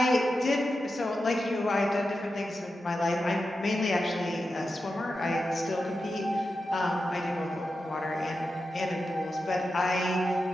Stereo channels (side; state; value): both; normal; correlation 0.90